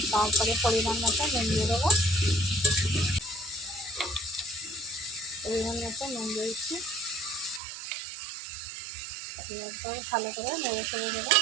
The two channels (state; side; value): drops out; left; at 7.6 s